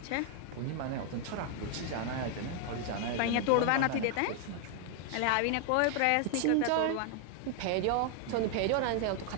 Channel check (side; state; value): both; different; correlation 0.00